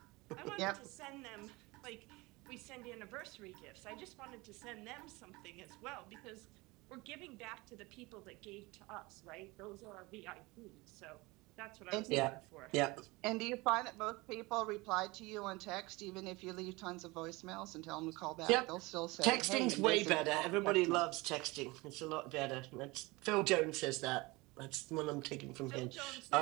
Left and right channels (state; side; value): quieter; left; 23.2 dB